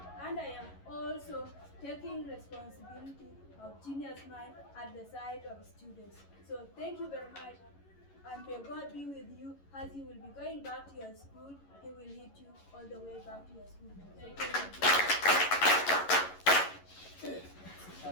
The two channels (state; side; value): late; right; 11 ms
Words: and I am also taking responsibility of Genius Mind at the side of students. So thank you very much, and may God be with you as you will be going back to your school. He will lead you all the way back to your school. Thank you.